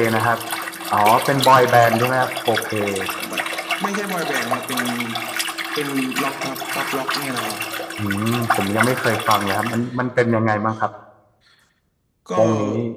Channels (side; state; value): both; identical; correlation 1.00